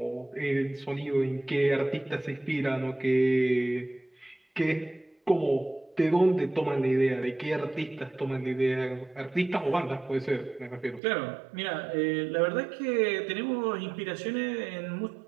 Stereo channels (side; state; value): left; drops out; at 11.0 s